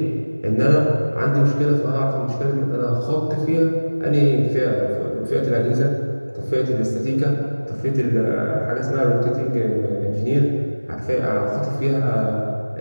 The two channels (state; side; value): inverted; both; correlation -1.00